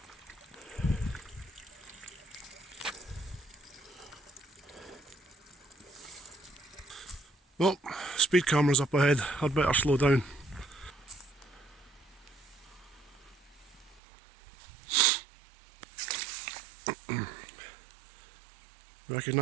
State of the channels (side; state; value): left; drops out; at 14.0 s